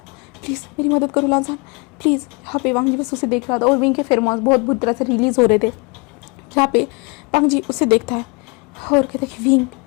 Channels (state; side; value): quieter; right; 30.3 dB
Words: please मेरी मदद करो लांजान प्लीज़। यहाँ पे वांग जी बस उसे देख रहा था और विंग के फेरोमोन्स बहुत बुरी तरह से रिलीज़ हो रहे थे। जहाँ पे वांग जी उसे देखता है और कहता है कि विंग,